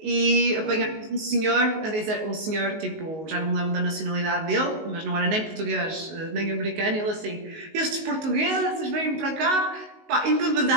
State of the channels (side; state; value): left; late; 19 ms